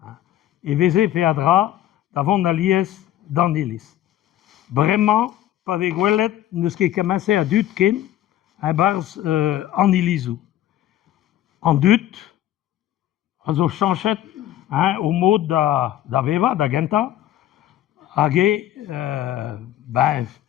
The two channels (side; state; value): right; quieter; 12.7 dB